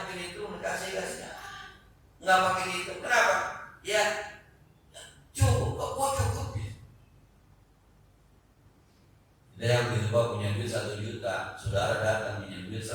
mungkin itu kasih nggak pakai itu. Kenapa? Ya cukup, kok cukup ya. Ada yang berubah punya duit 1 juta, saudara datang punya duit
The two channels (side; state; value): both; identical; correlation 1.00